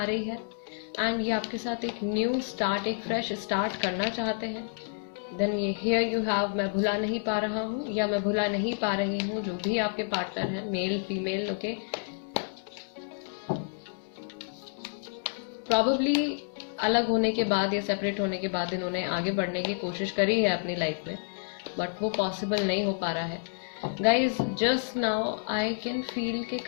रही है एंड ये आपके साथ एक न्यू स्टार्ट, एक फ्रेश स्टार्ट करना चाहते हैं। देन ये हियर यू हैव, मैं भुला नहीं पा रहा हूँ या मैं भुला नहीं पा रही हूँ, जो भी आपके पार्टनर है, मेल फीमेल, ओके, प्रॉबेबली अलग होने के बाद या सेपरेट होने के बाद इन्होंने आगे बढ़ने की कोशिश करी है अपनी लाइफ में, बट वो पॉसिबल नहीं हो पा रहा है। Guys, just now I can feel कि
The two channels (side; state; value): right; silent; digital silence